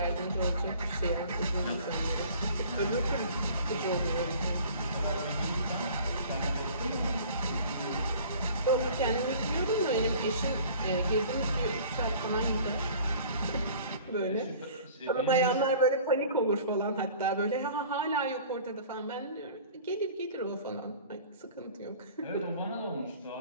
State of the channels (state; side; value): inverted; both; correlation -0.47